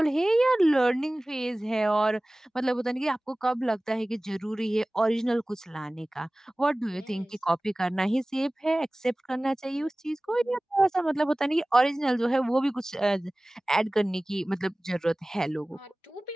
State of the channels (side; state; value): both; normal; correlation 0.98